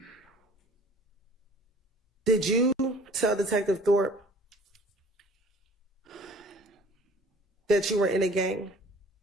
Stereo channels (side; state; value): both; normal; correlation 0.50